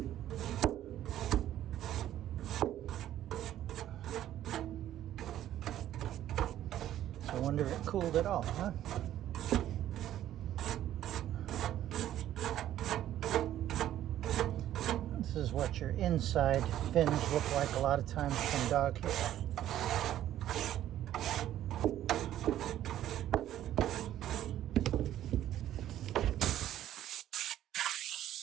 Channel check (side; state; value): left; quieter; 12.2 dB